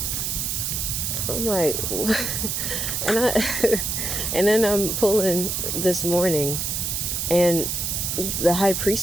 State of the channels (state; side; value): noise; right; hiss, 1 dB below the sound